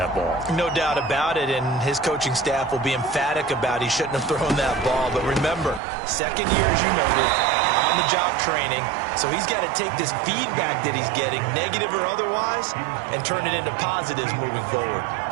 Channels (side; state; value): left; drops out; at 5.8 s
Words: ball. No doubt about it, and his coaching staff will be emphatic about he shouldn't have thrown that ball. But remember, 2nd year, as you noted, on-the-job training, so he's got to take this feedback that he's getting, negative or otherwise, and turn it into positives moving forward.